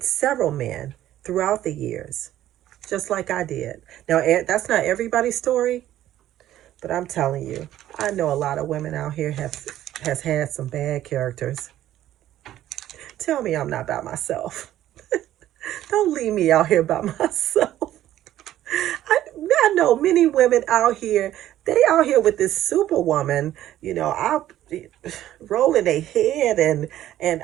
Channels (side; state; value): left; quieter; 13.0 dB